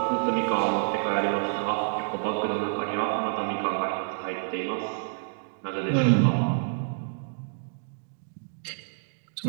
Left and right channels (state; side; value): silent; left; digital silence